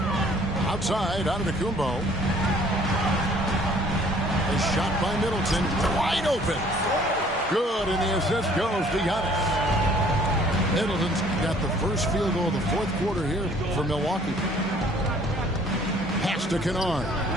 Outside, Antetokounmpo. A shot by Middleton, wide open. Good, and the assist goes to Giannis. Middleton's got the first field goal of the 4th quarter here for Milwaukee. Pass to Kennard.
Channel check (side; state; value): both; normal; correlation 0.57